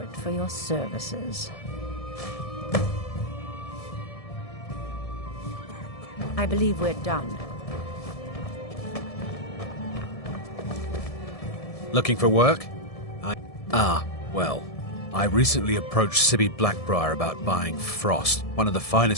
for your services. I believe we're done. Looking for work? Well, I recently approached Sibby Blackbriar about buying Frost, one of the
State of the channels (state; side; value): late; right; 1.7 ms